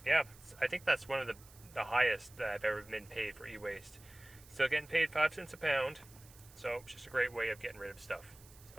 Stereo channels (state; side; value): noise; right; hiss, 22 dB below the sound